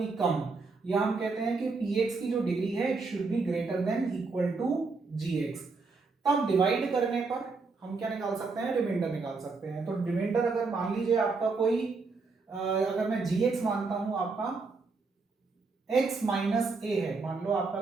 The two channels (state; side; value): quieter; left; 4.2 dB